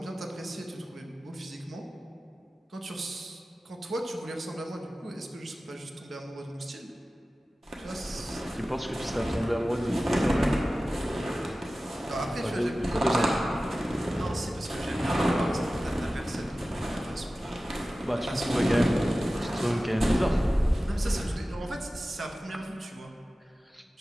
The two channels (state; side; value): normal; both; correlation 0.96